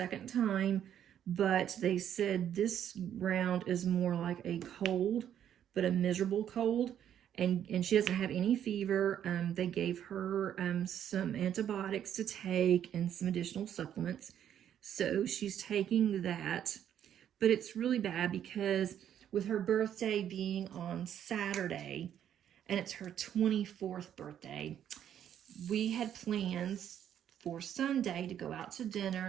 time, but they said this round is more like a cold, but a miserable cold. And she doesn't have any fever. They gave her some antibiotics to take and some additional supplements. So she's taking that. But it's really bad because with her birthday being on Saturday, and it's her 24th birthday, we had plans for Sunday to go out to dinner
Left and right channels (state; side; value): quieter; left; 9.9 dB